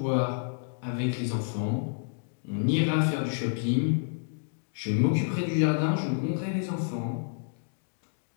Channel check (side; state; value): right; silent; digital silence